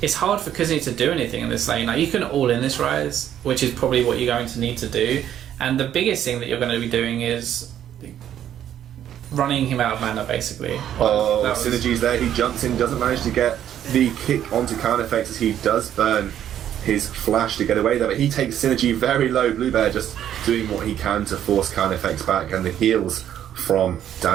it's hard for Kuzni to do anything in this lane. Like, you can all in this Ryze, which is probably what you're going to need to do. And the biggest thing that you're going to be doing is running him out of mana, basically. Synergy's there. He jumps in, doesn't manage to get the kick onto counter effects as he does burn his flash to get away there, but he takes Synergy very low. Bluebear just doing what he can to force counter effects back, and the heals from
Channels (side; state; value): left; quieter; 10.6 dB